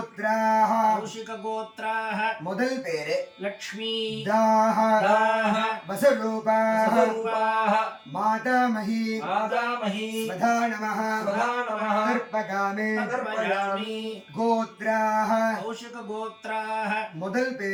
कौशिकगोत्राः முதல் பேரு लक्ष्मी தாஹ दाः வசுரூபாஹ वसुरूपाः மாதாமஹி मातामही स्वधा नमः स्वधा नमः தர்ப்பகாமே तर्पयामि கோத்ராஹ कौशिकगोत्राः முதல்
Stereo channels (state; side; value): identical; both; correlation 1.00